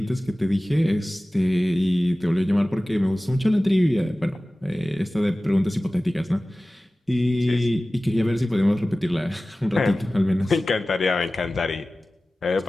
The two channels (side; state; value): both; normal; correlation 0.97